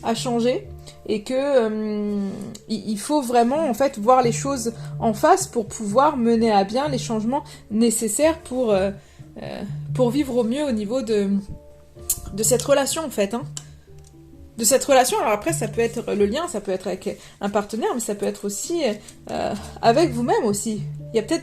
a changé. Et que il faut vraiment en fait voir les choses en face pour pouvoir mener à bien les changements nécessaires pour vivre au mieux au niveau de cette relation en fait. Hein. De cette relation, alors après ça peut être le lien, ça peut être avec un partenaire, mais ça peut être aussi avec vous-même aussi. Il y a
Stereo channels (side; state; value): both; identical; correlation 1.00